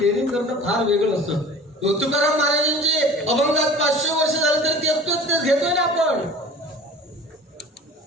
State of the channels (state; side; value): normal; both; correlation 0.41